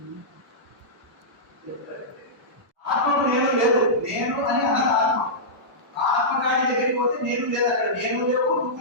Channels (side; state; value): both; normal; correlation -0.14